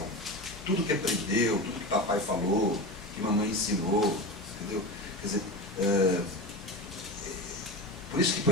Tudo que aprendeu, tudo que papai falou, que mamãe ensinou, entendeu? Quer dizer, por isso que,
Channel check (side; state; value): both; normal; correlation 0.25